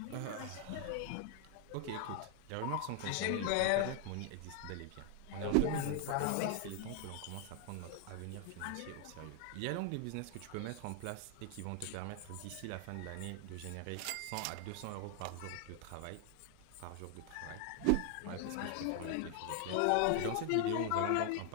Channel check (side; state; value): both; different; correlation 0.00